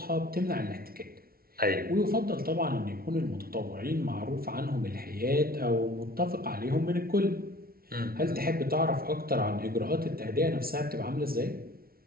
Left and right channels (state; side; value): late; left; 0.44 ms